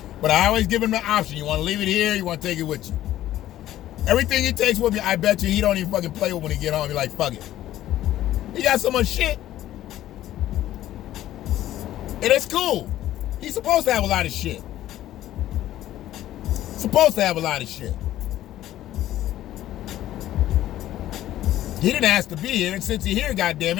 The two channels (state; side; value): quieter; right; 13.5 dB